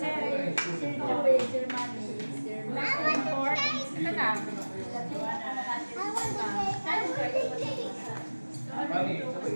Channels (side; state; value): both; inverted; correlation -1.00